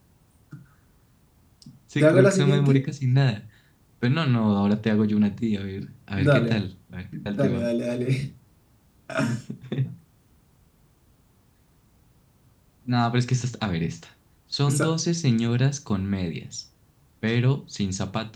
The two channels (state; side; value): identical; both; correlation 1.00